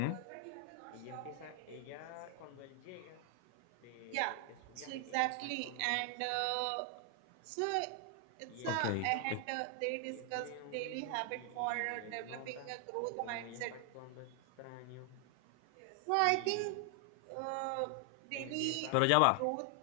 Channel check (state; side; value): different; both; correlation 0.00